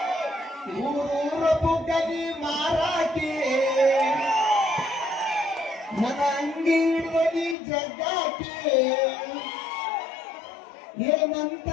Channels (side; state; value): right; drops out; at 7.6 s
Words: ಊರ ಬುಗ್ಗನಿ ಮಾರಾಕಿ ನನ್ನ ಅಂಗಿ ಹಿಡ್ದನಿ ಜಗ್ಗಾಕಿ ಏನಂತ